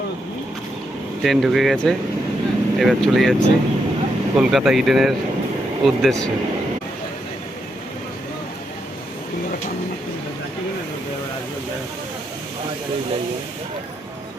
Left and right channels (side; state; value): both; normal; correlation 0.81